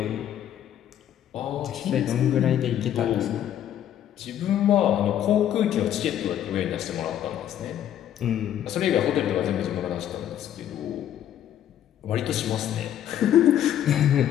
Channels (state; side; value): quieter; right; 10.8 dB